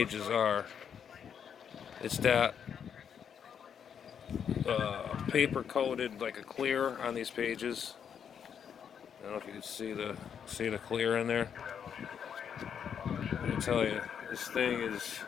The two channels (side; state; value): right; quieter; 7.8 dB